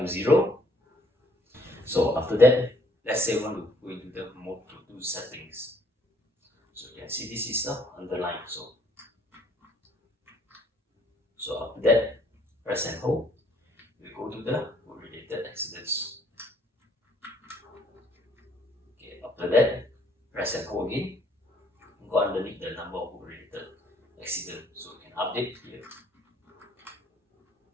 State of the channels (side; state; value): both; normal; correlation 0.64